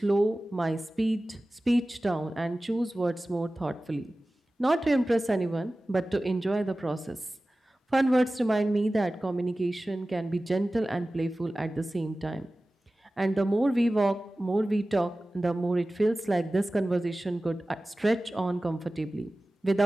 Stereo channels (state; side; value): normal; both; correlation 0.96